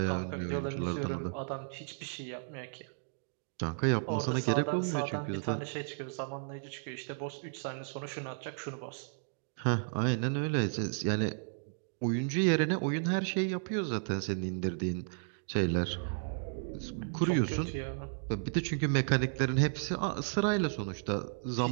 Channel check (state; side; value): silent; left; digital silence